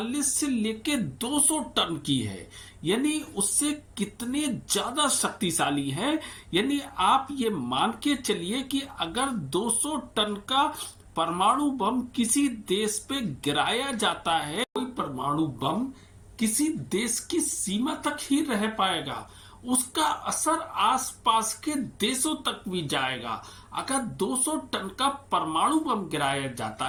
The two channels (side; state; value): both; identical; correlation 1.00